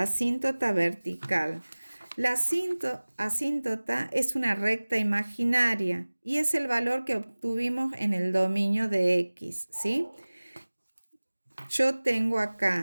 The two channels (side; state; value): both; inverted; correlation -1.00